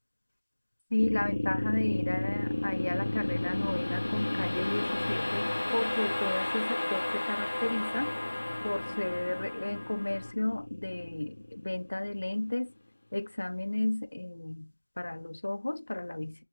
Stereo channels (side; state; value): both; inverted; correlation -1.00